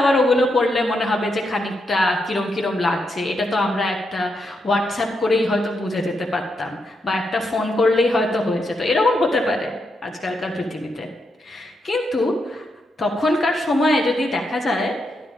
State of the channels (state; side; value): normal; both; correlation 0.82